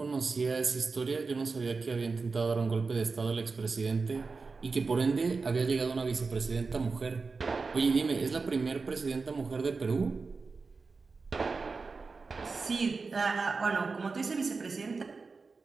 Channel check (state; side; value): quieter; left; 4.4 dB